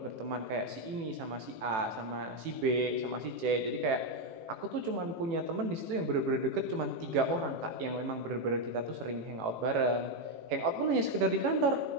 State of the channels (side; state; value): left; late; 18 ms